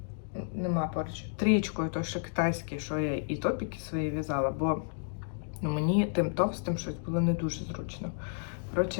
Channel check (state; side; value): silent; right; digital silence